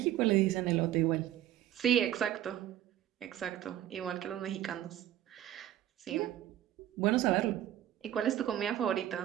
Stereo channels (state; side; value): quieter; left; 12.3 dB